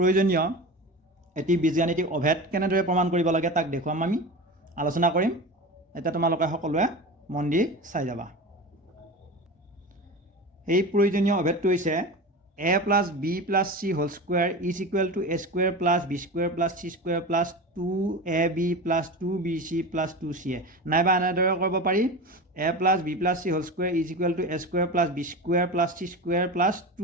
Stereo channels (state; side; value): normal; both; correlation 0.28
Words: এটি বীজগাণিতিক অভেদ কেনেদৰে প্ৰমাণ কৰিব লাগে তাক দেখুৱাম আমি আলোচনা কৰিম। এতিয়া তোমালোকে সকলোৱে মন দি চাই যাবা। এই প্ৰয়োজনীয় অভেদটো হৈছে a plus b plus c whole square is equal to a square plus b square plus c square plus 2ab plus 2bc plus 2ca। নাইবা এনেদৰে কৰিব পাৰি a plus b plus c whole square is equal to a square plus b square plus c square plus